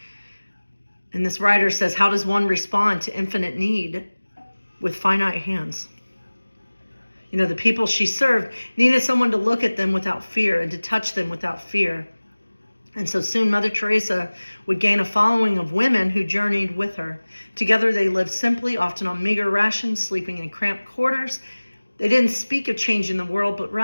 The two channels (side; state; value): both; inverted; correlation -1.00